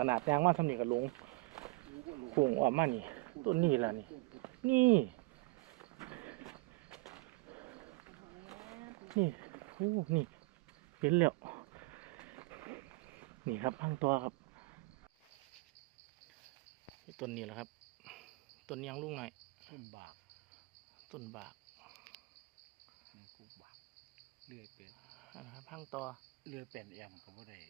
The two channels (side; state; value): left; quieter; 24.2 dB